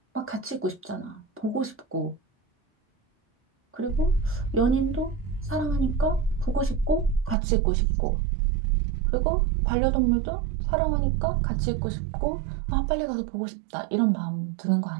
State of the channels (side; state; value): left; drops out; at 7.4 s